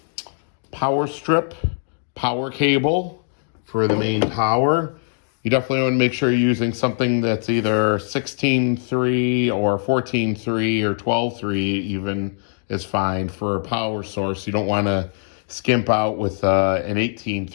power strip power cable for the main power. You definitely want to make sure you're using something that's either 16.3 or 14.3 or 12.3 even is fine for a power source. You don't want to skimp out with an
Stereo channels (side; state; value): right; silent; 64 dB below the other